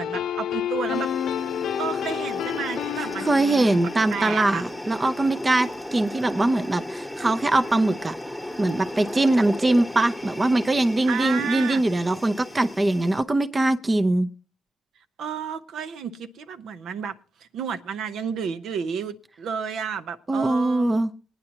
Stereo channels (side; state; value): both; normal; correlation 0.91